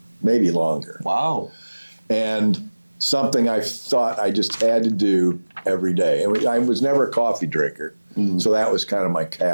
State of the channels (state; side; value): inverted; both; correlation -1.00